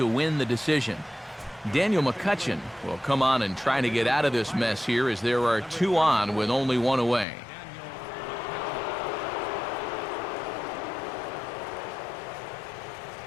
win the decision. Daniel McCutchen will come on and try to get out of this mess here as there are 2 on with only 1 away.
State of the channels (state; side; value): drops out; right; at 7.2 s